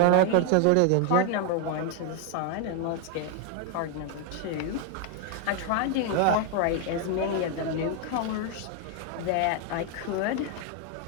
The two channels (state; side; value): different; both; correlation 0.01